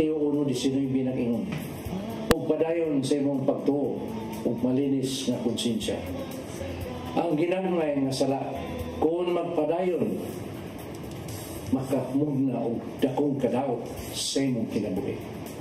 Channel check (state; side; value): identical; both; correlation 1.00